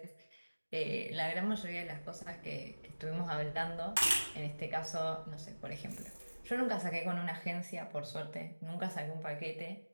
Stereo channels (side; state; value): both; inverted; correlation -1.00